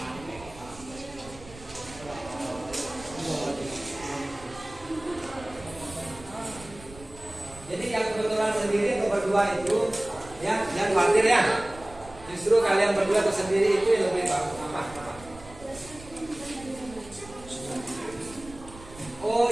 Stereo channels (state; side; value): noise; right; rumble, 19 dB below the sound